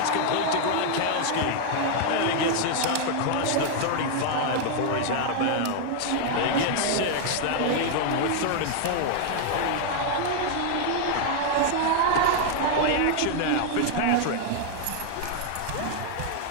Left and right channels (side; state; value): both; different; correlation 0.00